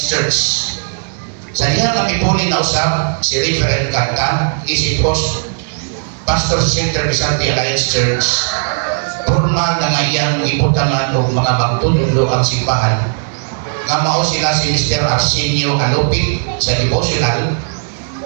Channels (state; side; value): silent; left; digital silence